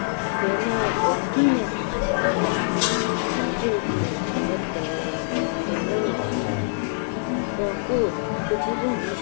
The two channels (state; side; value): silent; right; 62 dB below the other